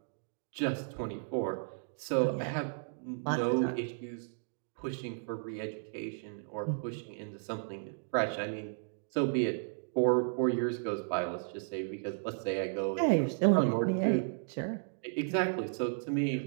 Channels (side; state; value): left; silent; digital silence